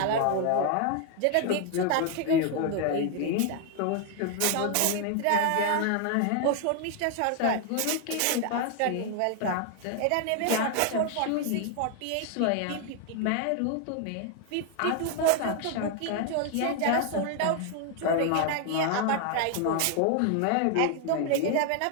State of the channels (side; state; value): both; different; correlation 0.01